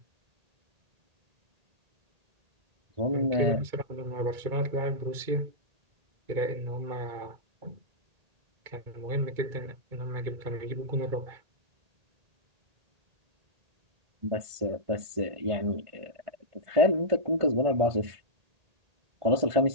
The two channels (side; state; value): left; late; 1.8 ms